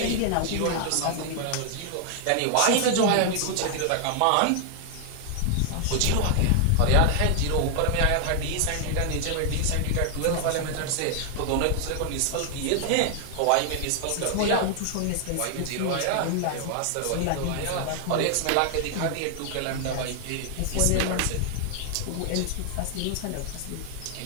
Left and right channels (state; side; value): different; both; correlation 0.00